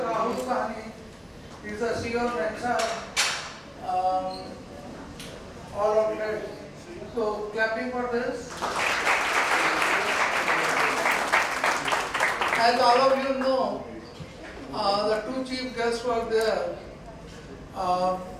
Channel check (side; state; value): both; identical; correlation 1.00